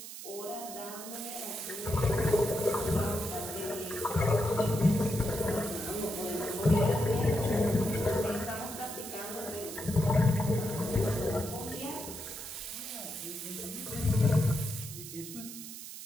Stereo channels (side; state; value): right; noise; hiss, 11 dB below the sound